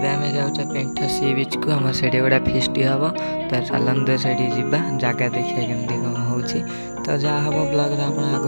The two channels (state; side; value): inverted; both; correlation -1.00